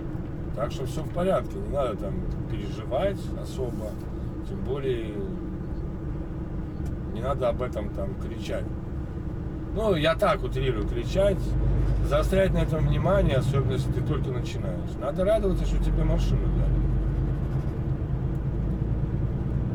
Так что все в порядке, не надо там переживать особо, тем более не надо об этом там кричать. Ну, я так утрирую, кричать, заострять на этом внимание, особенно если ты только начинаешь. Надо радоваться, что тебе машину дали.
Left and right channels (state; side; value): identical; both; correlation 1.00